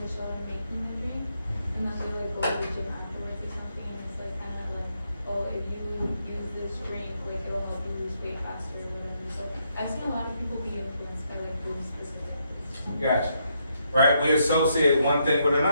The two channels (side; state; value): both; inverted; correlation -0.77